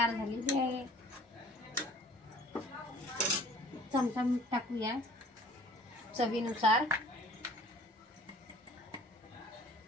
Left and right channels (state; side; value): normal; both; correlation 0.51